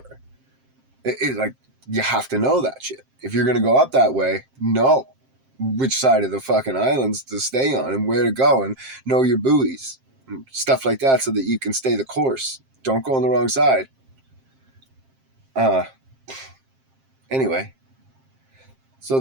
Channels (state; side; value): late; left; 7.6 ms